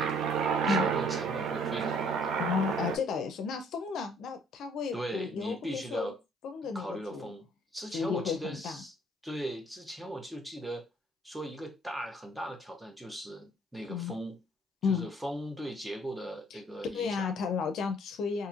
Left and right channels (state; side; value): normal; both; correlation 0.60